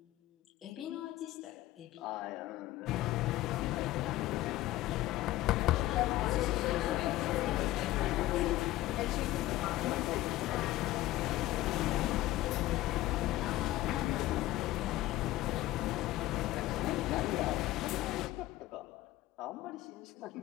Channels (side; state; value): right; quieter; 16.2 dB